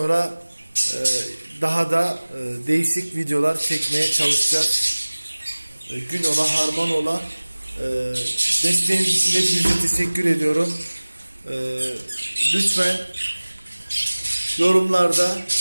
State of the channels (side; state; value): both; inverted; correlation -1.00